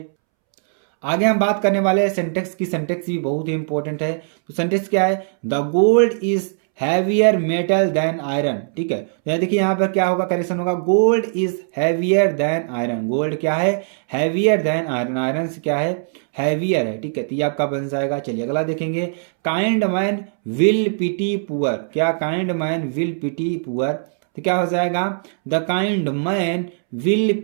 आगे हम बात करने वाले हैं सेंटेक्स की। सेंटेक्स भी बहुत ही इंपॉर्टेंट है। तो सेंटेक्स क्या है, the gold is heavier metal than iron, ठीक है। तो देखिए यहाँ पर क्या होगा, करेक्शन होगा, gold is heavier than iron. Gold क्या है, हैवियर देन आयरन, आयरन से क्या है, हैवियर है, ठीक है। तो ये आपका बन जाएगा। चलिए अगला देखेंगे, kind man will pity poor, क्या, kind man will pity poor, तो क्या हो जाएगा, the kind man will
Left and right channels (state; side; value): silent; left; 66 dB below the other